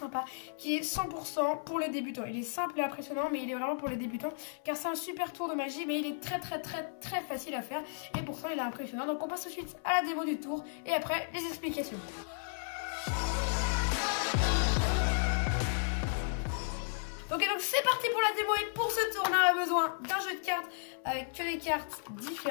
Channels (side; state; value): right; silent; 55 dB below the other